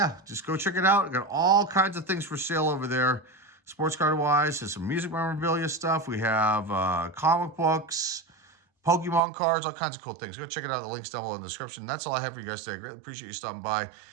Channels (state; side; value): drops out; left; at 9.2 s